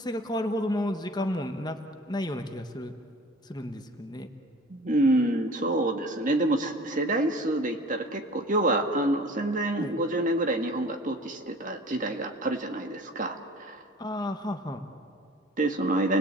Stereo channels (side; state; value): both; normal; correlation 0.44